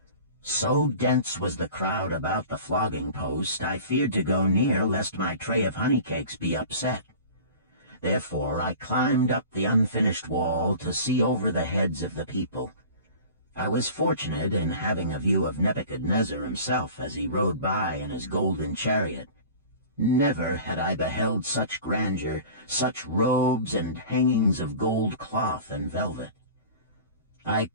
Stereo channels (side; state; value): both; inverted; correlation -0.40